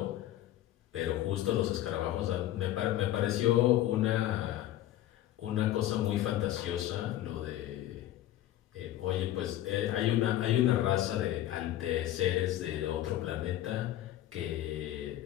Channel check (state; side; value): quieter; right; 13.6 dB